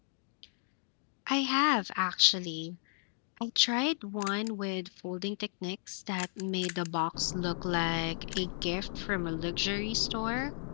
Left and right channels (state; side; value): silent; right; digital silence